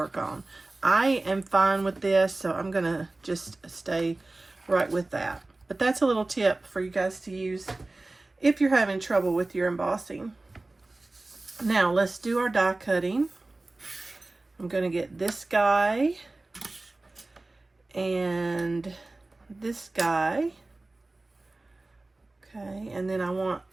on. I am fine with this, so I'm going to just stay right with that. But that's a little tip for you guys to use if you're having trouble with your embossing. Now let's do our die cutting. I'm going to get this guy and this guy. Okay, and then I want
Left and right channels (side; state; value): left; quieter; 3.0 dB